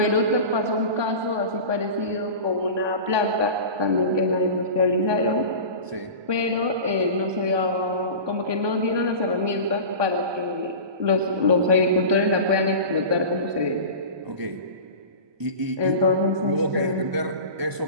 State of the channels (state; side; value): late; left; 1.2 ms